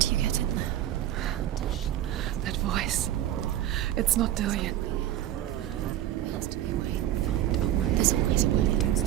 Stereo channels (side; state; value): left; quieter; 12.6 dB